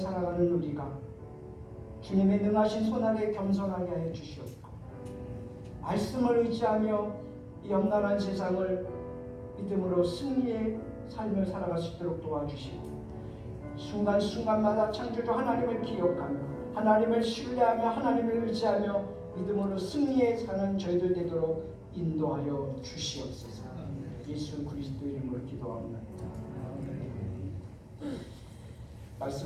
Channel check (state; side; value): identical; both; correlation 1.00